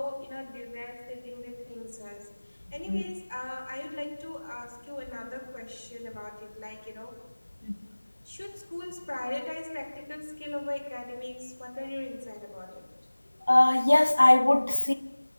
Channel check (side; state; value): both; inverted; correlation -1.00